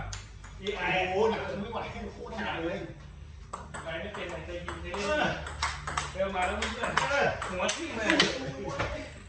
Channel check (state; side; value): identical; both; correlation 1.00